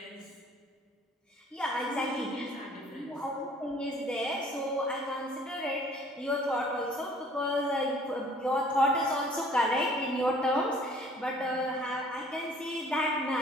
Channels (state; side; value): normal; both; correlation 0.54